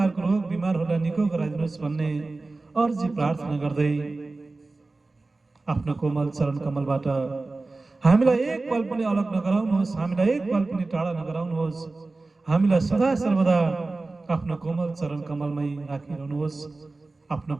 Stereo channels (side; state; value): left; quieter; 3.4 dB